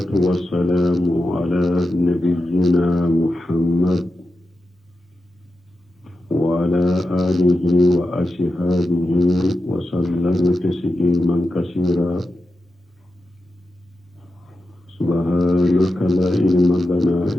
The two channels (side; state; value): both; normal; correlation 0.91